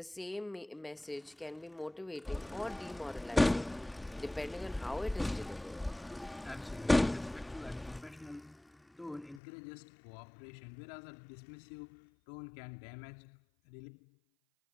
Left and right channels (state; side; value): drops out; right; at 9.4 s